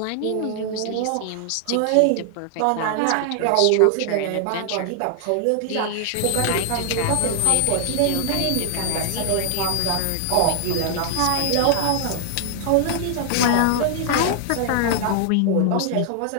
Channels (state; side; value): different; both; correlation 0.00